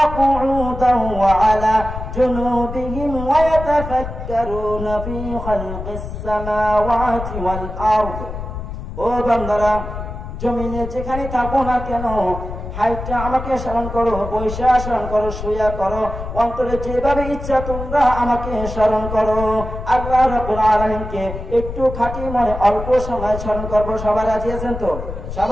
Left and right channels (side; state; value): left; noise; rumble, 8 dB below the sound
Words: কুউদান ওয়া আলা জুনুবিহিম ওয়া ইয়াতাফাক্কারুনা ফী খালকিস সামাওয়াতি ওয়াল আরদ। ও বান্দারা, জমিনে যেখানে থাকো না কেন, হাইটা আমাকে স্মরণ করো, বৈশা স্মরণ করো, শুয়া করো, অন্তরে যেভাবে ইচ্ছা তোমরা আমাকে স্মরণ করো। আল্লাহ রাব্বুল আলামিনকে একটু খাঁটি মনে অল্প সময় স্মরণ করবো। সবাই রাজি আছেন তো?